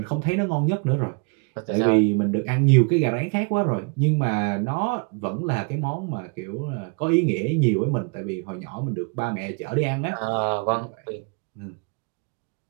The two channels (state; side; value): quieter; left; 35.4 dB